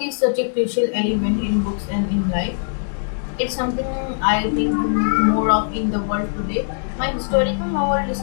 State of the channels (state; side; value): silent; right; digital silence